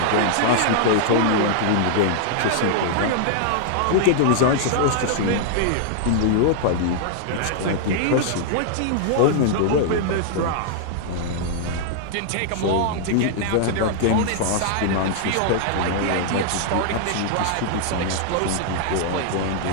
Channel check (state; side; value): different; both; correlation -0.01